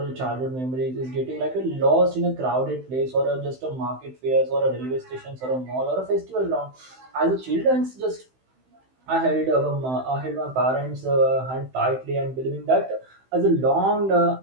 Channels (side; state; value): left; late; 16 ms